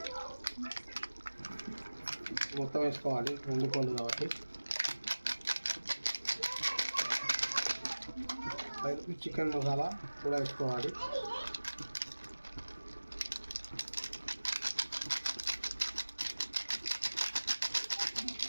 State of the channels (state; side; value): inverted; both; correlation -1.00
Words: మొత్తం వేసుకోవాలి. 2 కోళ్ళు కాబట్టి 5 రూపీస్ చికెన్ మసాలా కూడా వేసుకోవాలి.